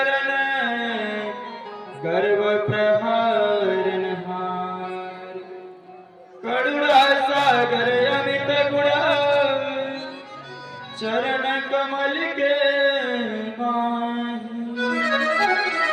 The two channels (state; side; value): identical; both; correlation 1.00